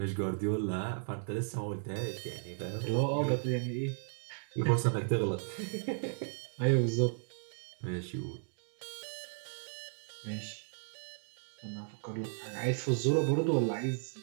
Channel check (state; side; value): silent; left; 54 dB below the other